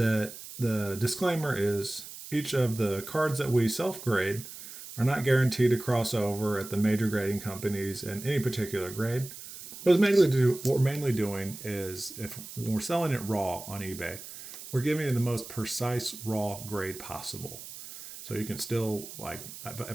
the disclaimer is each of the cards that we self-grade are not guaranteed to cross over at the major grading companies in any particular grade. What we're mainly doing is when we're selling it raw on eBay, we're giving it the most precise raw grade possible. So you can still, like,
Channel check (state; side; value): noise; right; hiss, 13 dB below the sound